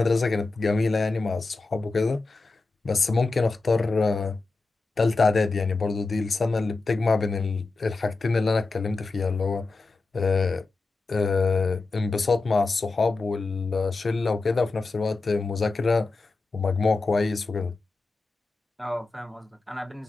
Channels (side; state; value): right; quieter; 3.7 dB